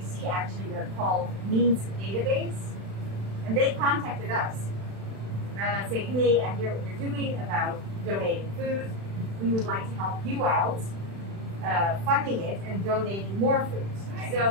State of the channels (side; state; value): left; late; 36 ms